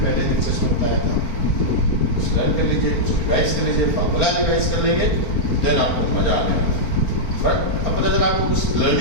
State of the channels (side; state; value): right; late; 4.4 ms